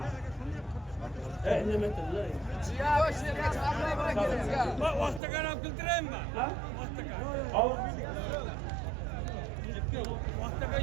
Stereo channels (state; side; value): drops out; left; at 5.2 s